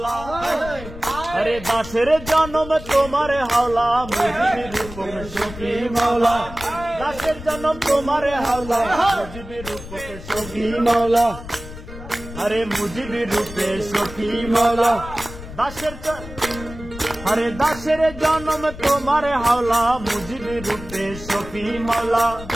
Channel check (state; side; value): noise; left; rumble, 13 dB below the sound